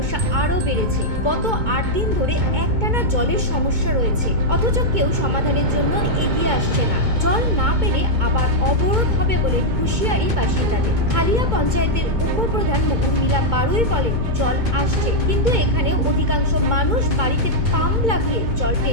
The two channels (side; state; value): left; late; 2.2 ms